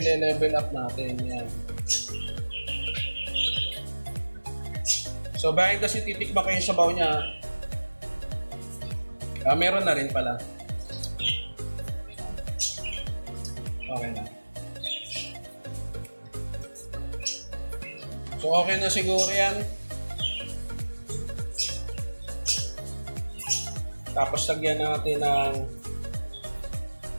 up natin yan. So behind the scene, titikman ko yung sabaw niya. Meron na rin pala. Okay na. So okay na siguro yan. Tapos lagyan natin ng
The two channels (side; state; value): both; inverted; correlation -1.00